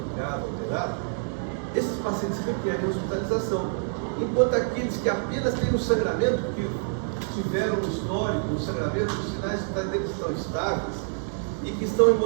alterado, esses pacientes requerem hospitalização. Enquanto aqueles que apenas têm um sangramento, que tiveram um histórico, um sangramento, os sinais deles estão estáveis e que estão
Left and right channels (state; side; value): silent; left; digital silence